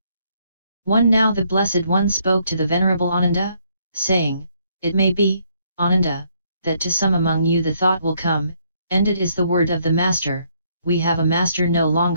1. Now the Blessed One spoke to the Venerable Ananda, saying, it may be, Ananda, that to some among you the thought will come, ended is the word of the Master, we have a Master no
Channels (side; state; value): both; inverted; correlation -0.70